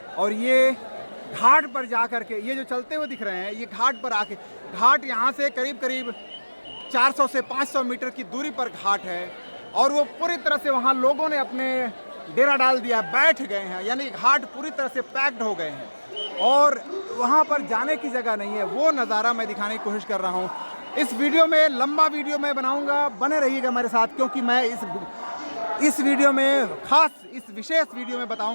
और ये घाट पर जा करके ये जो चलते हुए दिख रहे हैं ये घाट पर आके, घाट यहाँ से करीब करीब 400 से 500 मीटर की दूरी पर घाट है और वो पूरी तरह से वहाँ लोगों ने अपने डेरा डाल दिया, बैठ गए हैं, यानी घाट पूरी तरह से पैक्ड हो गए हैं और वहाँ पर जाने की जगह नहीं है। वो नज़ारा मैं दिखाने की कोशिश कर रहा हूँ। इस वीडियो में लंबा वीडियो मैं बनाऊँगा, बने रहिएगा मेरे साथ, क्योंकि मैं इस वीडियो में खास इस विशेष वीडियो में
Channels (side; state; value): both; inverted; correlation -1.00